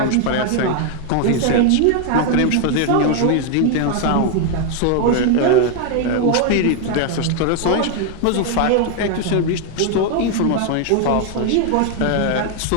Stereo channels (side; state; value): both; different; correlation 0.00